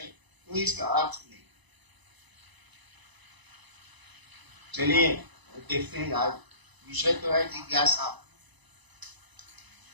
कोई इसका अर्थ नहीं। चलिए देखते हैं, आज विषय तो है जिज्ञासा।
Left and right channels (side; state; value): left; late; 1.0 ms